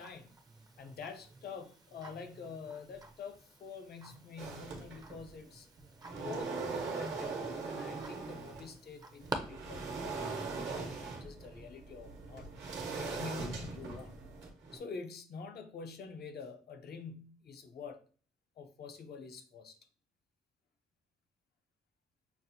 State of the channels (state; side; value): normal; both; correlation 0.53